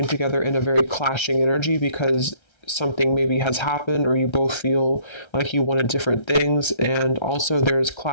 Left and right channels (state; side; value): late; right; 1.3 ms